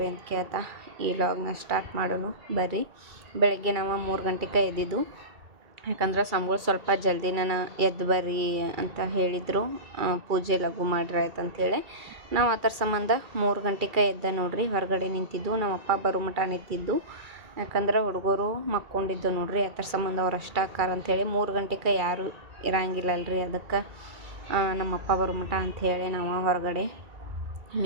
ಅಂತ ಕೇಳ್ತಾ ಈ ವ್ಲಾಗ್ನ ಸ್ಟಾರ್ಟ್ ಮಾಡೋಣ ಬರ್ರಿ. ಬೆಳಗ್ಗೆ ನಾವು 3 ಗಂಟೆಗೆ ಎದ್ದಿದ್ದು. ಯಾಕಂದ್ರೆ ಸ್ವಾಮಿಗಳು ಸ್ವಲ್ಪ ಜಲ್ದಿನ ಎದ್ದು ಬರ್ರಿ ಅಂತ ಹೇಳಿದರು. ಪೂಜೆ ಲಘು ಮಾಡ್ರಿ ಆಯ್ತು ಅಂಥೇಳಿ ನಾವು ಅದರ ಸಂಬಂಧ 3 ಗಂಟೆಗೆ ಎದ್ದ ನೋಡ್ರಿ. ಹೊರಗಡೆ ನಿಂತಿದ್ದು, ನಮ್ಮ ಅಪ್ಪ ಬರೋ ಮಟ ನಿಂತಿದ್ದು. ಯಾಕಂದ್ರೆ ಹುಡುಗರು ಮಕ್ಕೊಂಡಿದ್ದು ನೋಡ್ರಿ. ಅದರ ಸಂಬಂಧ ಅವ್ರು ಅಷ್ಟ ಆಕಾರ ಅಂಥೇಳಿ 3 ಗಂಟೆಗೆ ಯಾರೂ ಇರಂಗಿಲ್ಲಲ್ರಿ. ಅದಕ್ಕೆ ನಮ್ಮ ಅಪ್ಪ ಬರೋ ಮಟ ಅಂಥೇಳಿ ನಾವು ಹೊರಗಡೆ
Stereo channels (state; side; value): late; left; 2.4 ms